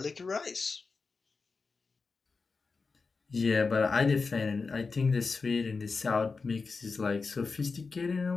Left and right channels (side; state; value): right; quieter; 4.5 dB